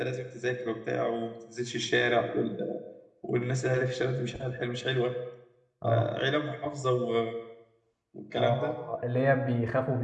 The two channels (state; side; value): identical; both; correlation 1.00